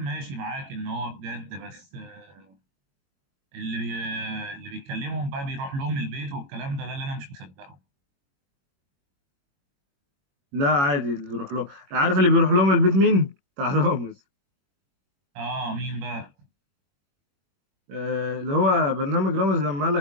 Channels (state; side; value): late; left; 21 ms